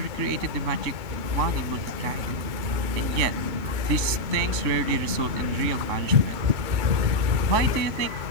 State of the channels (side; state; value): left; late; 3.6 ms